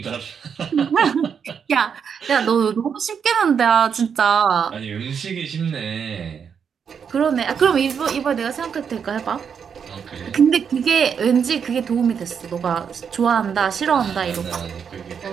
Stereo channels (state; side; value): quieter; left; 7.0 dB